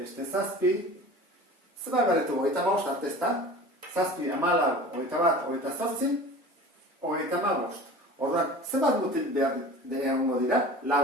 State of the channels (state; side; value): normal; both; correlation 0.39